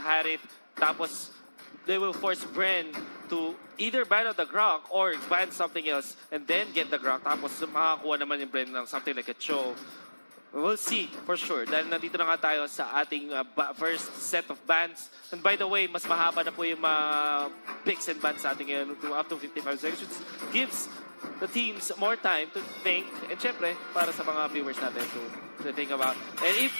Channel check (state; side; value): inverted; both; correlation -1.00